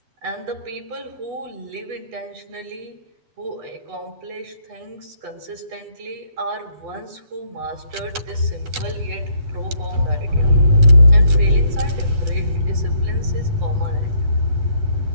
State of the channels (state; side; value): late; left; 8.0 ms